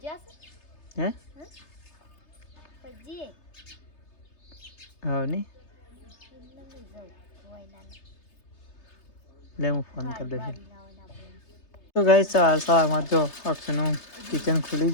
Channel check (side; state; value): right; late; 3.3 ms